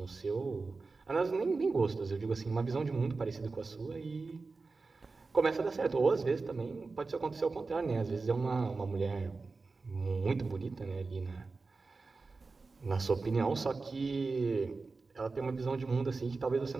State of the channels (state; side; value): quieter; left; 4.0 dB